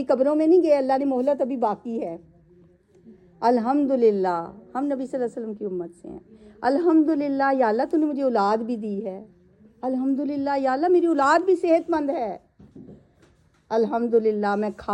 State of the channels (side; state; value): both; identical; correlation 1.00